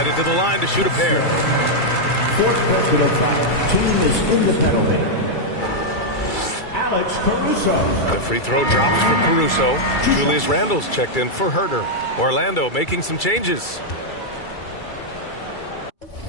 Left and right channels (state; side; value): late; right; 2.3 ms